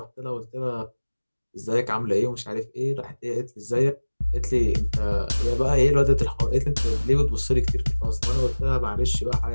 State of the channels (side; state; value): both; inverted; correlation -1.00